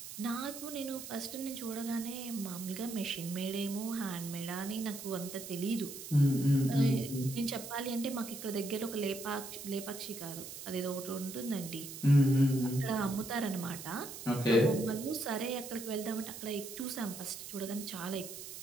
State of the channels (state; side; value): noise; right; hiss, 10 dB below the sound